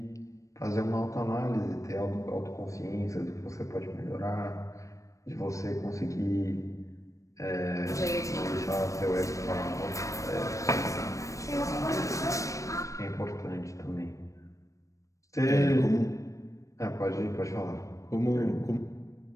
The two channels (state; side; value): late; right; 0.16 ms